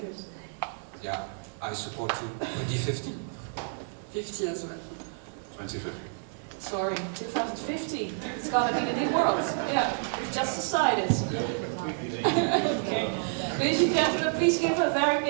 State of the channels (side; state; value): left; silent; digital silence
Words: Yeah, I support 2050. 50 as well. 2050. Sorry, 2050. It's gonna be the new world. Yeah, we've just decided. Okay. Ladies and gentlemen, please give a very